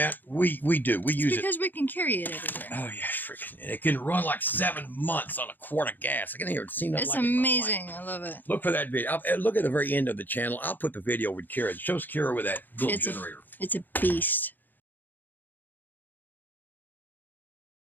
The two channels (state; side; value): late; right; 0.088 ms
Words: we do. We use it. Because we can carry it everywhere. Oh, yeah, freaking. It can run like 7 months on a quart of gas. I can hear it. Seen that. It's like amazing. I love it. Look for that video. Look at the very end of the channel. I'll put the video with Kira. It shows Kira with that little generator. It's a beast.